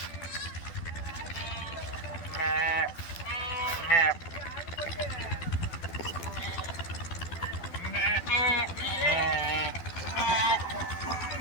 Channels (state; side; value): late; right; 12 ms